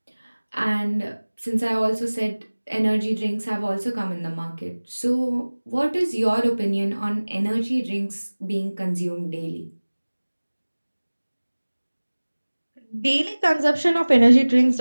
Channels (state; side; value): inverted; both; correlation -1.00